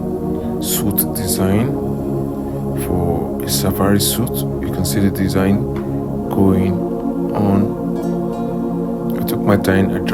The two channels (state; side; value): identical; both; correlation 1.00